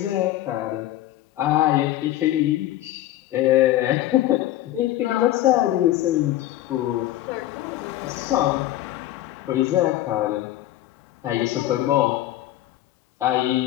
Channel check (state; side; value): quieter; right; 14.2 dB